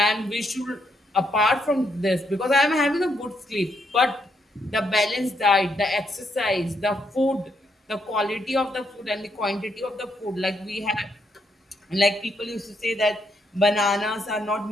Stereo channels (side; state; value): both; normal; correlation 0.76